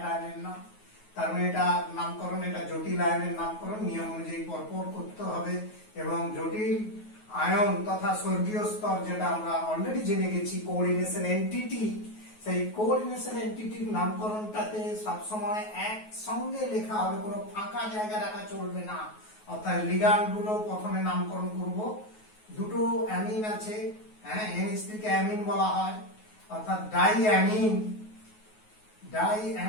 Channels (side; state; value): right; late; 9.4 ms